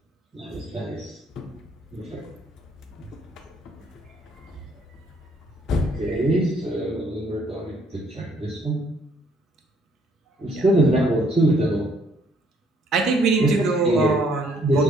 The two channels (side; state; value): both; normal; correlation 0.65